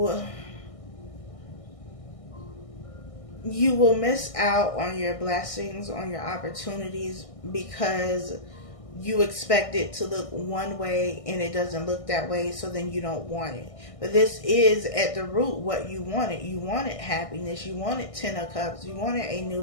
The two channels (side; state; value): right; late; 1.6 ms